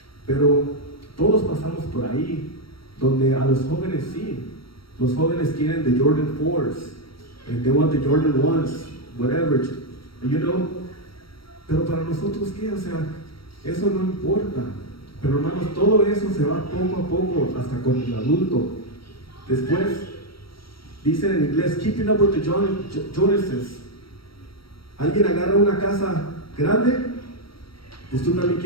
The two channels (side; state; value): right; late; 0.75 ms